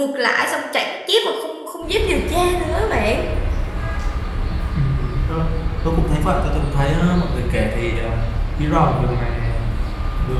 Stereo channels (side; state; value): both; identical; correlation 1.00